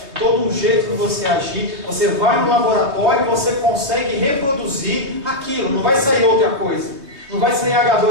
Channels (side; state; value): left; late; 3.2 ms